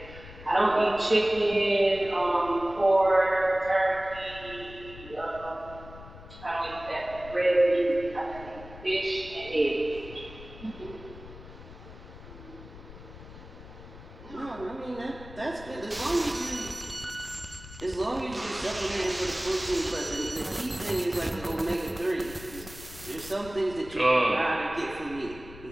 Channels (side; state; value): left; noise; rumble, 16 dB below the sound